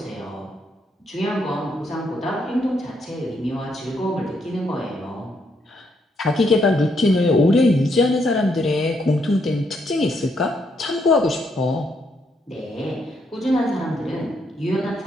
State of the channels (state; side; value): normal; both; correlation 0.75